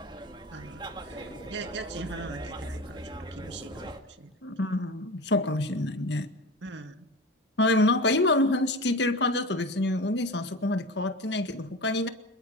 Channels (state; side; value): normal; both; correlation 0.30